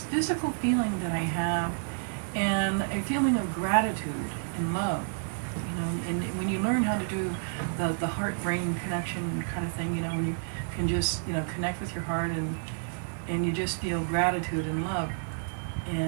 physical feeling that I have, and a feeling of gratitude and love, you know. And when you learn how to do the heart-brain connection kind of thing, you know, when you can just, you know, connect with your heart and you just feel gratitude and love,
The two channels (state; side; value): silent; left; digital silence